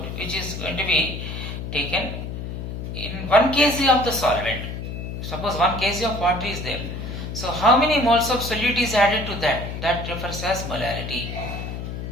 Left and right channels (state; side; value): noise; left; hum, 6 dB below the sound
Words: which is going to be taken in 1 kg of the solvent. Suppose 1 kg of water is there. So how many moles of solute is added to that? That refers as molality.